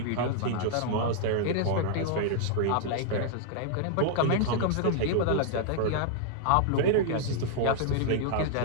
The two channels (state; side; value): different; both; correlation -0.01